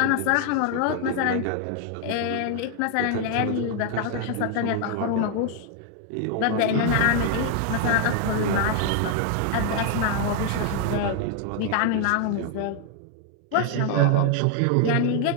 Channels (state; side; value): different; both; correlation 0.00